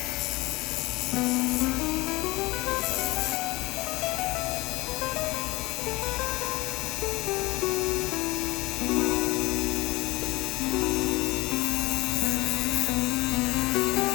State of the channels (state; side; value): quieter; right; 21.6 dB